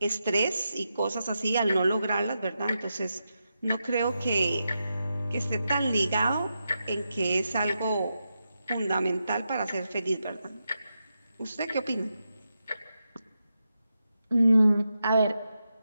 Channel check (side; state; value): both; inverted; correlation -0.87